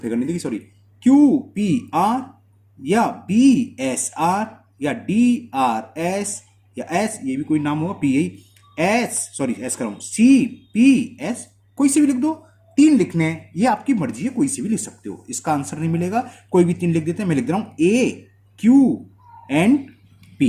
नहीं लिखी सॉरी, क्यू पी आर, या बी एस आर, या डी आर एस, या एस, ये भी कोई नाम होगा, पी एस, सॉरी एस कर रहा हूं, सी पी एस, कोई से भी लिख दो। 3 लिखने हैं, ये आपकी मर्जी है, कोई से भी लिख सकते हो, इसका आंसर नहीं मिलेगा, कोई भी 3 लिख देते हैं। मैं लिख दे रहा हूं ए क्यू एंड पी।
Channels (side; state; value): both; identical; correlation 1.00